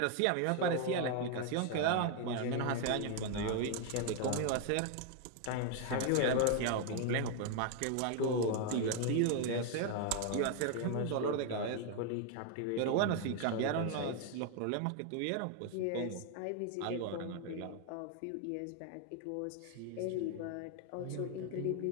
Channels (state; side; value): different; both; correlation 0.00